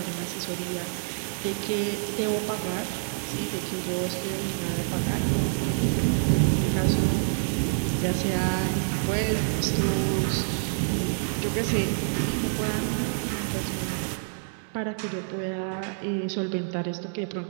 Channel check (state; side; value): silent; left; 60 dB below the other